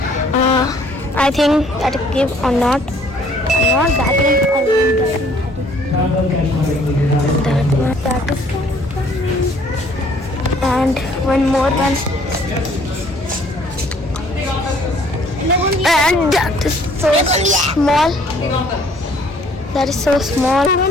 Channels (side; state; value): both; normal; correlation 0.59